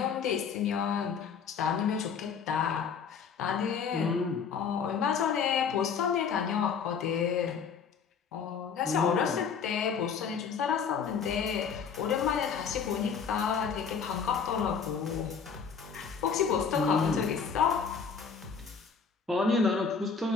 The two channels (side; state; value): right; quieter; 6.3 dB